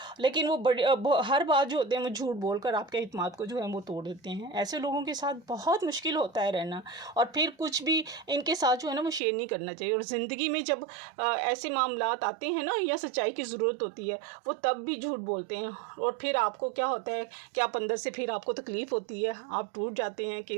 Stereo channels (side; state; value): left; drops out; at 9.2 s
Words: लेकिन वो हर बात जो होते हैं वो झूठ बोलकर आपके इत्मीनान को जो है वो तोड़ देते हैं। ऐसे लोगों के साथ बहुत मुश्किल होता है रहना, और फिर कुछ भी इनके साथ जो है ना वो शेयर नहीं करना चाहिए। और ज़िंदगी में जब ऐसे मामलात आते हैं ना या सच्चाई की ज़रूरत होती है वो तब भी झूठ बोलते हैं, और फिर आपको क्या होता है कि आप अंदर से फिर आपको तकलीफ़ होती है, आप टूट जाते हैं कि